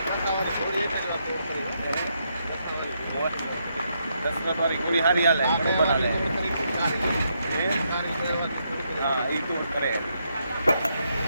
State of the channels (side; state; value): both; inverted; correlation -0.79